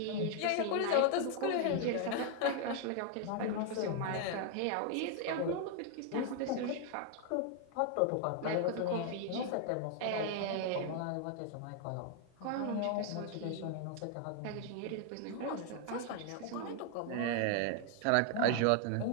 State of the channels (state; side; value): different; both; correlation 0.00